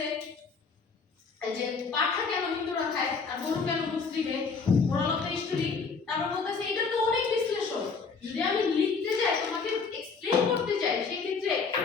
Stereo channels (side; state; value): right; quieter; 5.0 dB